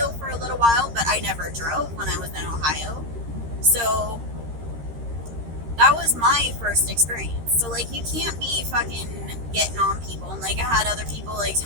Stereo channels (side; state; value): left; late; 13 ms